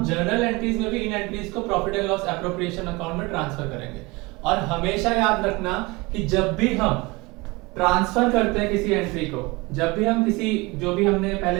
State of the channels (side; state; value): left; quieter; 24.3 dB